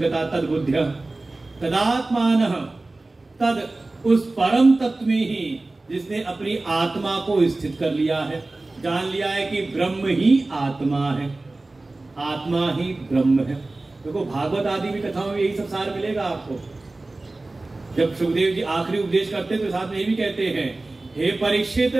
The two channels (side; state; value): left; quieter; 3.0 dB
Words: गता तद बुद्ध्या तदात्मानः, तद उस परम तत्व में ही जिसने अपनी आत्मा को स्थित कर लिया है, जान लिया है कि ब्रह्म ही आत्मा है, आत्मा ही ब्रह्म है। देखो भागवत आदि भी कथाओं में यही सब सार मिलेगा आपको। जब सुखदेव जी आखिरी उपदेश करते तो साथ में ये भी कहते हैं, हे परीक्षित,